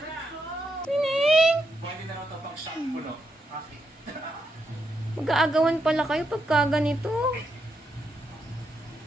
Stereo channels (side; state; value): both; normal; correlation 0.81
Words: Tining! Mag-aagawan pala kayo pagka ganito.